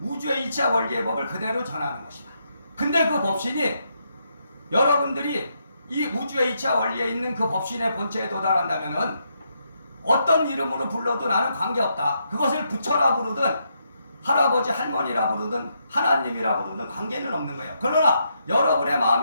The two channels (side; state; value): both; inverted; correlation -0.79